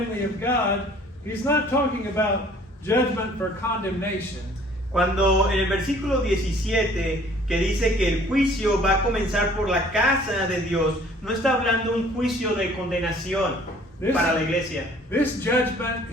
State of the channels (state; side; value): normal; both; correlation 0.54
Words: of God, he's not talking about judgment for condemnation. Cuando en el versículo 17 que dice que el juicio va a comenzar por la casa de Dios, no está hablando un juicio de condenación para la iglesia. This judgment